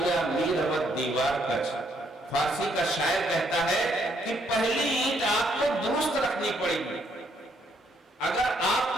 میر روت دیوار کچ۔ فارسی کا شاعر کہتا ہے کہ پہلی اینٹ آپ کو درست رکھنی پڑے گی۔ اگر آپ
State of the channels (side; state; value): both; normal; correlation 0.71